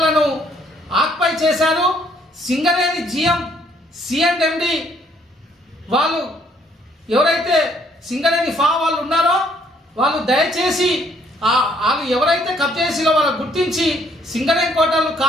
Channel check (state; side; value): normal; both; correlation 0.66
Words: ఆక్యుపై చేశారు. సింగరేణి జిఎం సిఎండి వాళ్ళు ఎవరైతే సింగరేణి వాళ్ళు ఉన్నారో వాళ్ళు దయచేసి వాళ్ళు ఎవరైతే కబ్జా చేసిలో వాళ్ళని గుర్తించి సింగరేణి కోటర్లు